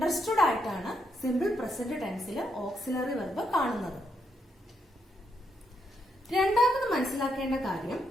ആയിട്ടാണ് സിമ്പിൾ പ്രസന്റ് ടെൻസിൽ ഓക്സിലറി വെർബ് കാണുന്നത്. രണ്ടാമത് മനസ്സിലാക്കേണ്ട കാര്യം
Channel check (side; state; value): both; normal; correlation 0.78